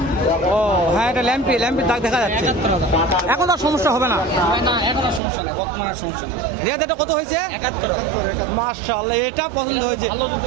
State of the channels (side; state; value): left; drops out; at 5.2 s